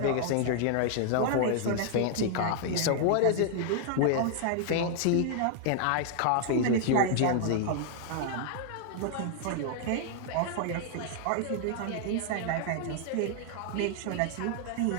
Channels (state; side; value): different; both; correlation 0.00